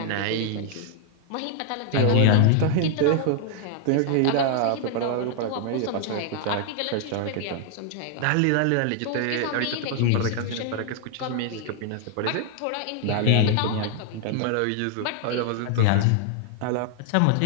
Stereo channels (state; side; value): different; both; correlation 0.00